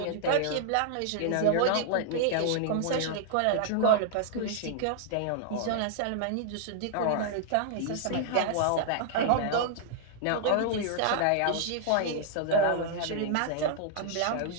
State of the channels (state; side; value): different; both; correlation -0.01